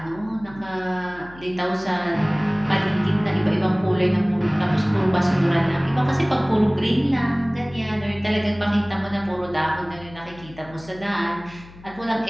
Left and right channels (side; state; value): left; noise; hum, 20 dB below the sound